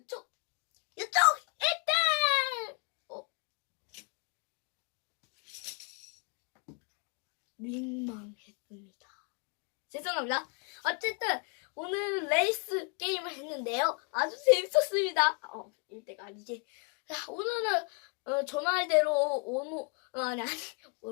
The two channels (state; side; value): quieter; right; 36.1 dB